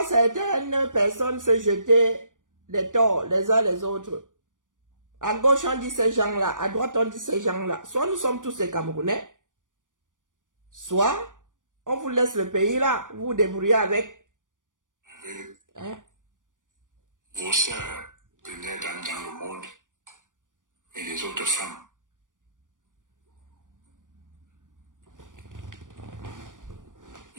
certaines personnes se jeter les torts les uns les autres. À gauche on dit ces gens-là, à droite on dit ces gens-là. Soit nous sommes tous des Camerounais, soit on vous laisse le pays là, vous vous débrouillez avec. Hein? Vos sœurs, premières dames dans le monde, et les autres femmes.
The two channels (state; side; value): late; left; 0.88 ms